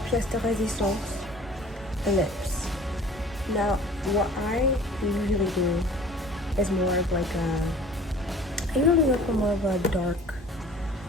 de résistance, lips. Now, what I usually do is more of like I usually look for more of a dark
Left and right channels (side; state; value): both; normal; correlation 0.47